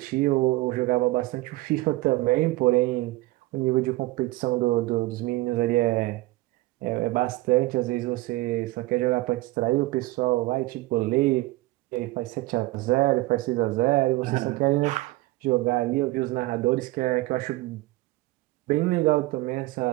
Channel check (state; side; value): quieter; left; 20.1 dB